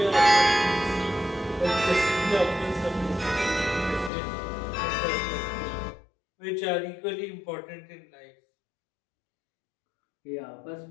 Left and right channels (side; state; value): right; drops out; at 4.1 s